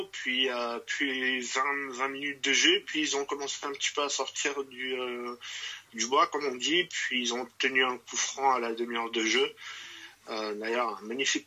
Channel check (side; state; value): both; identical; correlation 1.00